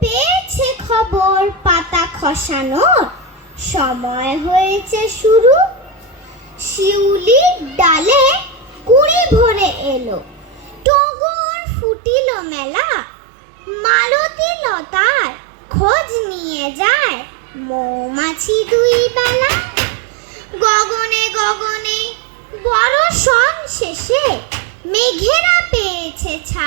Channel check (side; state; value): left; drops out; at 10.9 s